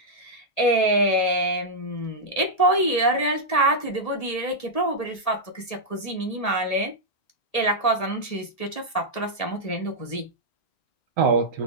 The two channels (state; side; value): late; right; 1.8 ms